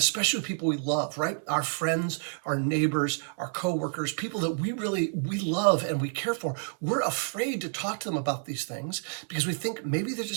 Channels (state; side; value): silent; left; 58 dB below the other